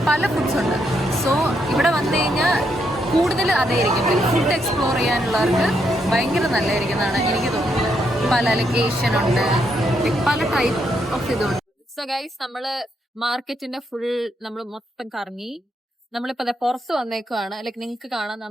പല ഫുഡ്സ് ഉണ്ട്. സോ ഇവിടെ വന്നു കഴിഞ്ഞാൽ കൂടുതൽ അതായിരിക്കും. ലൈക്ക് ഫുഡ് എക്സ്പ്ലോർ ചെയ്യാനുള്ളവർക്ക് ഭയങ്കര നല്ലതായിരിക്കുന്നതാണ് എനിക്ക് തോന്നുന്നത്. പല ലൈക്ക് ഏഷ്യൻ ഉണ്ട്, പല ടൈപ്പ് ഓഫ് ഇതുണ്ട്. സോ ഗൈസ്, നമ്മള് മാർക്കറ്റിന്റെ ഫുൾ നമ്മൾ മൊത്തം കറങ്ങി. നമ്മളിപ്പോ അതെ പുറത്ത് വന്നേക്കുവാണ്. ലൈക്ക് നിങ്ങൾക്ക് കാണാം,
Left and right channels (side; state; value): both; normal; correlation 0.78